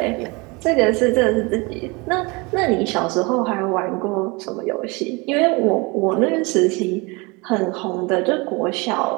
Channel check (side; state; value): left; quieter; 27.0 dB